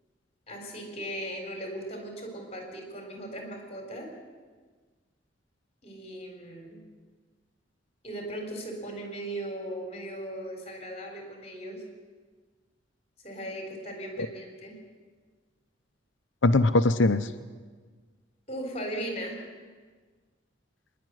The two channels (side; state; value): both; normal; correlation 0.40